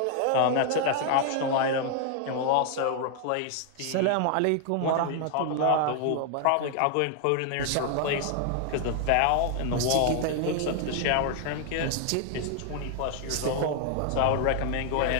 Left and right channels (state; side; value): different; both; correlation 0.00